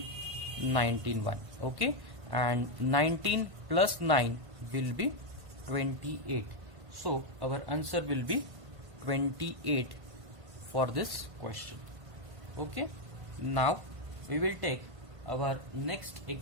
19 1. Okay, and 19 plus 9 will be 28. So our answer will be 28 for this question. Okay, now we will take our next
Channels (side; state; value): left; late; 1.5 ms